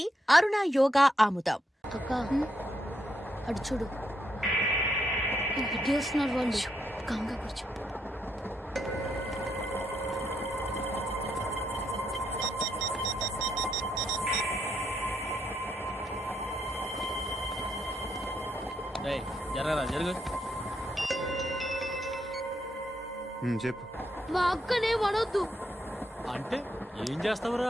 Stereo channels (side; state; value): both; normal; correlation 0.78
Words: అరుణ యోగా ఆముదం. అక్క అడు చూడు, వస్తున్నారు వాళ్ళు. కంగా కూర్చో. జరగరా జరుగు. చెప్పు. మా అక్కనే వనొద్దు అంటే ఏం